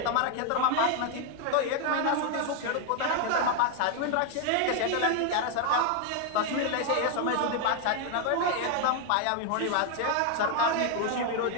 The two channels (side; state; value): both; different; correlation 0.00